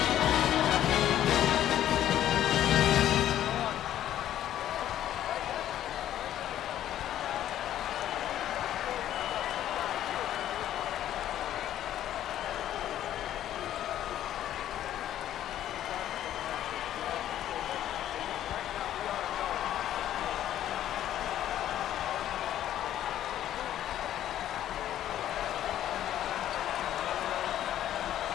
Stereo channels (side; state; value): right; quieter; 11.8 dB